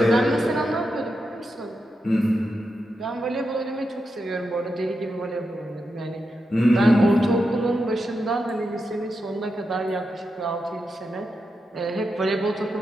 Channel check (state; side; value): normal; both; correlation 0.87